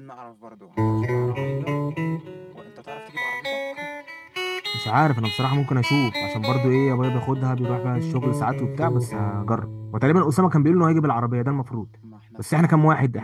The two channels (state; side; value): identical; both; correlation 1.00